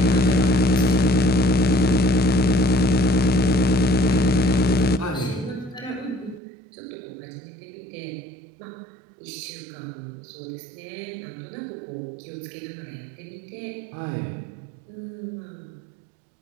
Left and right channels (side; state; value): left; drops out; at 6.4 s